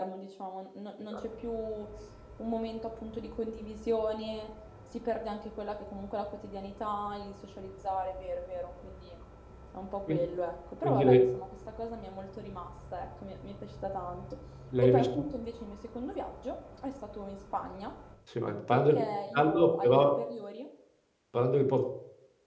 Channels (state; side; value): identical; both; correlation 1.00